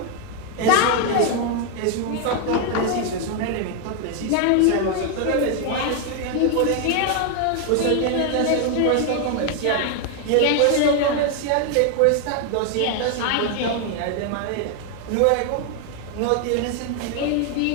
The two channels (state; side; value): different; both; correlation 0.00